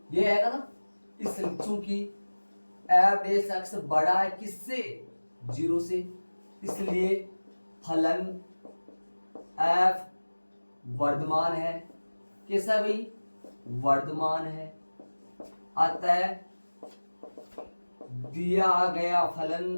ये आएगा ना। इस चूंकि एफ डेस एक्स बड़ा है किससे, जीरो से, इसलिए फलन एफ वर्तमान है, कैसा है भाई, वर्तमान है। अतः दिया गया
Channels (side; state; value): both; inverted; correlation -1.00